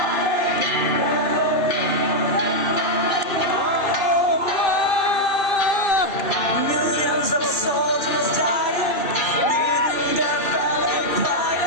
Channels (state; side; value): late; right; 2.3 ms